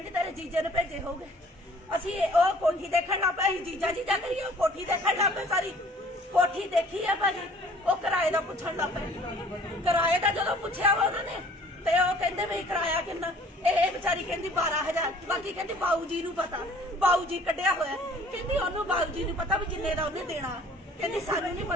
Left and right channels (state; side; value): normal; both; correlation 0.53